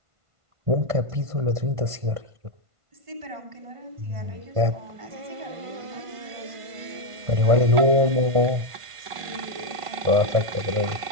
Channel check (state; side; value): late; left; 1.5 ms